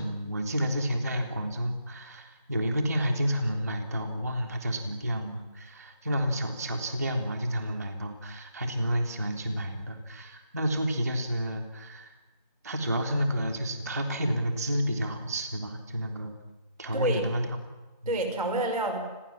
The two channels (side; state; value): both; inverted; correlation -0.74